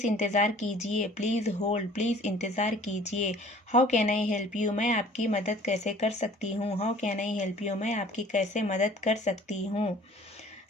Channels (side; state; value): both; normal; correlation 0.50